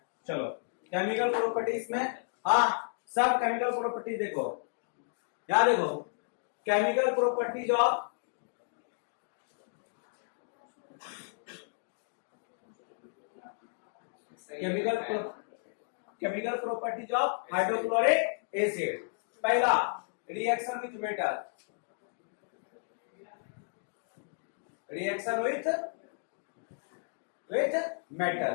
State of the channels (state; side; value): silent; right; digital silence